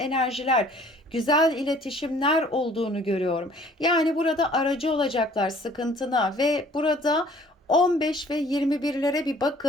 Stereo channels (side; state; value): both; normal; correlation 0.55